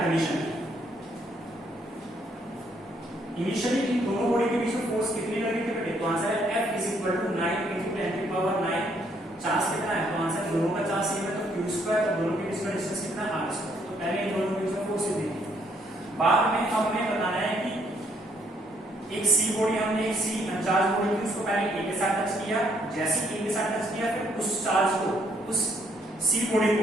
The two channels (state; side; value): normal; both; correlation 0.69